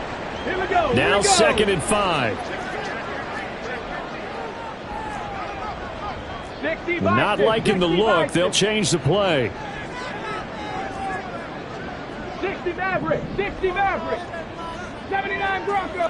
Now 2nd and 5. Not liking the look. They'll change the play. 60 Maverick, 60 Maverick, 79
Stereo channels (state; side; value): identical; both; correlation 1.00